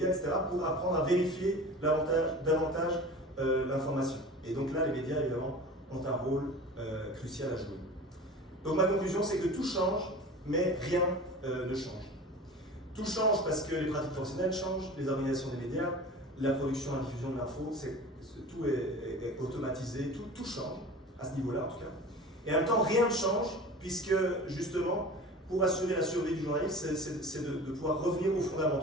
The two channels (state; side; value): normal; both; correlation 0.37